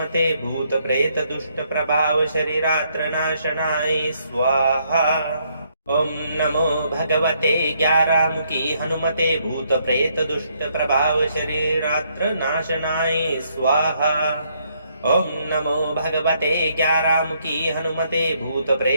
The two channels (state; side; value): inverted; both; correlation -0.72